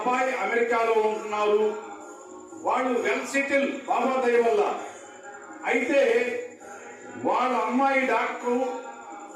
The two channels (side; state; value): both; identical; correlation 1.00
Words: అమెరికాలో ఉంటున్నారు. వాళ్ళు వెల్ సెటిల్ బాబా దయ వల్ల. అయితే వాళ్ళ అమ్మాయి డాక్టరు,